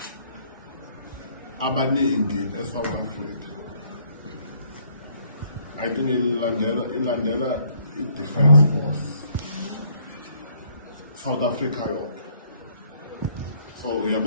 abaningi eSouth Africa. I think ilandela i-Defence Force South Africa yonke. So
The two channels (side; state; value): both; inverted; correlation -0.65